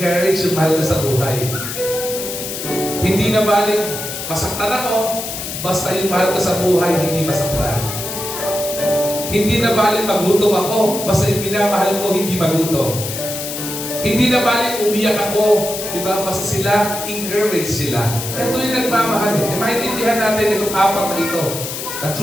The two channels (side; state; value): left; noise; hiss, 6 dB below the sound